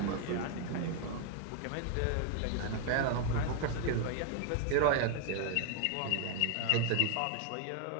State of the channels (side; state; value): both; different; correlation 0.00